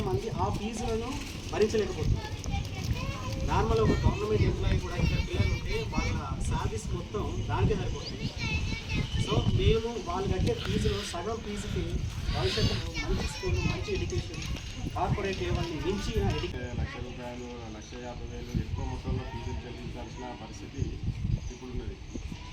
ఆ ఫీజులను భరించలేకపోతున్నారు. నార్మల్ ఒక గవర్నమెంట్ ఎంప్లాయీ కూడా ఇక్కడ పిల్లలు ఉంటే వాళ్ళ శాలరీస్ మొత్తం దానికే సరిపోతుంది. సో మేము వాళ్ళు కట్టే ఫీజులో సగం ఫీజుకి భవిష్యత్తులో మంచి స్కూల్, మంచి ఎడ్యుకేషన్, కార్పొరేట్ లెవెల్ని మించిన ₹1,00,000, ₹1,50,000 ఎక్కువ మొత్తంలో ఫీజులు చెల్లించాల్సిన పరిస్థితి ఇప్పుడు ఉన్నది.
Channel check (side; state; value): both; identical; correlation 1.00